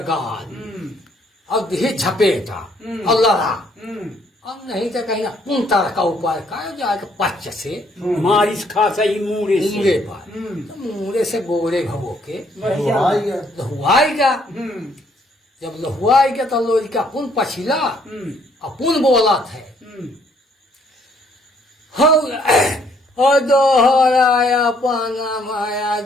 गाल अब दी झपेटा और लड़ा अब नहीं तो कहीं पुनता का ऊपर का जाएगा पच्च से मारिस खासा ही मूरे पर तो मूरे से गोरे भगो के लहुआएगा जब लहुआएगा तो लोरी का पुन पछिला अपुन बोला थे दोहराया पाना माया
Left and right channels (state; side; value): normal; both; correlation 0.66